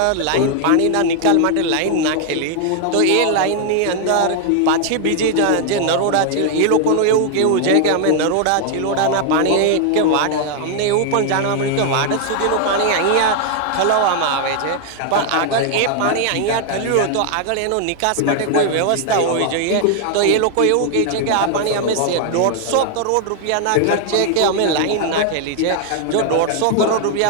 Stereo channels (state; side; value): different; both; correlation 0.00